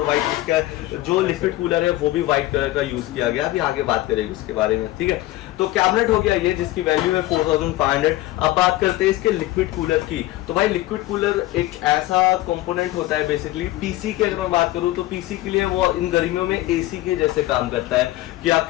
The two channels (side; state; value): right; quieter; 16.7 dB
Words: व्हाइट इसका जो लिक्विड कूलर है वो भी व्हाइट कलर का यूज किया गया, अभी आगे बात करेंगे उसके बारे में, ठीक है। तो कैबिनेट हो गया ये जिसकी वैल्यू है 4500। अब बात करते हैं इसके लिक्विड कूलर की। तो भाई लिक्विड कूलर एक ऐसा कंपोनेंट होता है बेसिकली पीसी की अगर मैं बात करूं तो पीसी के लिए वो इन गर्मियों में एसी के जैसे काम करता है कि